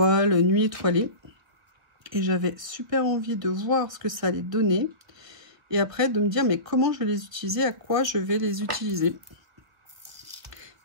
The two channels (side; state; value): left; late; 1.6 ms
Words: nuit étoilée. Et j'avais super envie de voir ce que ça allait donner. Et après, de me dire, mais comment je vais les utiliser, à quoi je vais les utiliser.